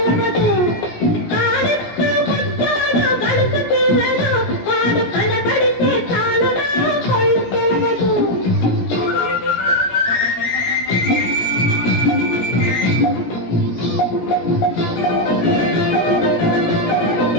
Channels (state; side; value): late; right; 17 ms